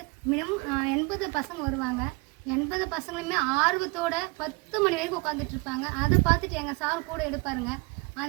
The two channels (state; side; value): quieter; left; 28.1 dB